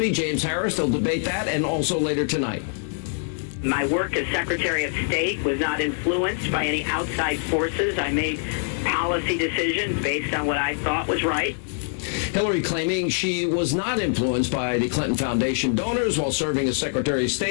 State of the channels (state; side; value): silent; right; digital silence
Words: James Harris. They'll debate that, and also later tonight. My work as Secretary of State was not influenced by any outside forces. I made policy decisions based on what I thought was right. Hillary claiming she was not influenced by the Clinton Foundation donors while serving as Secretary of